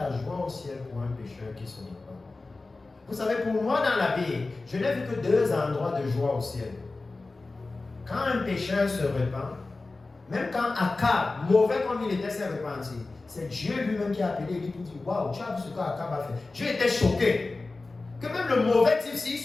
joie au ciel pour un pécheur qui se repent. Vous savez, pour moi dans la Bible, je n'ai vu que deux endroits de joie au ciel. Quand un pécheur se repent, même quand Akab, mauvais comme il était, s'est repenti, c'est Dieu lui-même qui a appelé lui pour dire, waouh, tu as vu ce qu'Akab a fait. Dieu était choqué. Que même le mauvais type, s'il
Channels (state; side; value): quieter; right; 3.5 dB